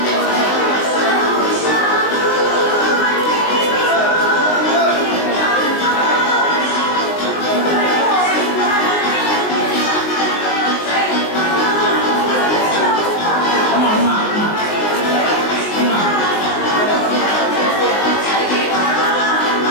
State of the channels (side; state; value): right; late; 19 ms